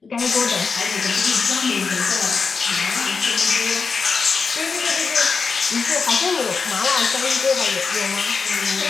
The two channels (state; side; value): quieter; right; 5.0 dB